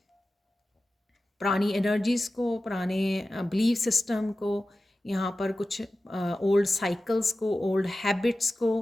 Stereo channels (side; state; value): both; normal; correlation 0.94